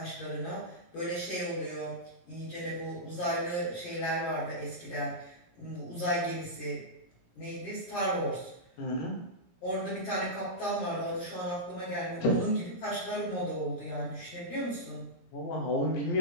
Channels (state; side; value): late; right; 17 ms